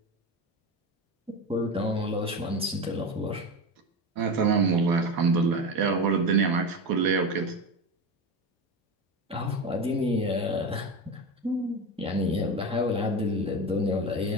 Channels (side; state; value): both; normal; correlation 0.22